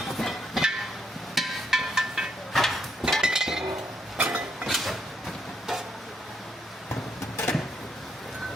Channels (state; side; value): normal; both; correlation 0.76